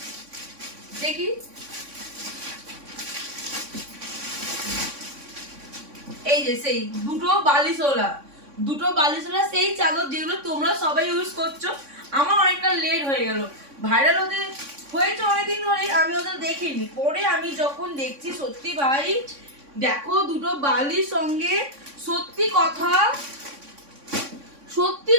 দেখি এই যে সেই দুটো বালিশওয়ালা সেই চাদর যেগুলো তোমরা সবাই ইউজ করছো। আমার অনেকটা লেট হয়ে গেল, ভাইরাল হতে হয়েছে অনেকদিন ধরেই, আমি ওদের দেখিনি। পরে আমি যখন দেখছি সত্যি ভাই দেখো দুটো বালির সঙ্গে সত্যি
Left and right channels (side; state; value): left; late; 3.6 ms